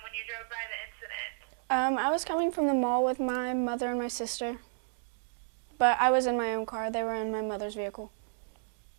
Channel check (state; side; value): silent; left; 56 dB below the other